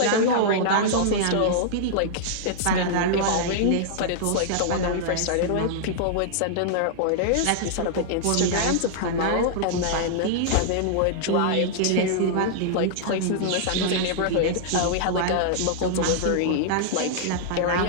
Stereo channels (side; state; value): both; different; correlation -0.01